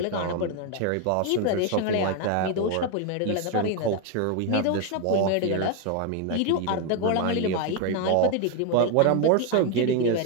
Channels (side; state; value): both; different; correlation 0.01